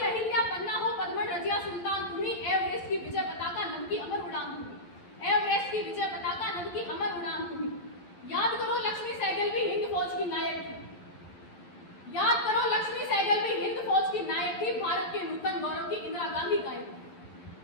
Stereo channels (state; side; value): late; right; 11 ms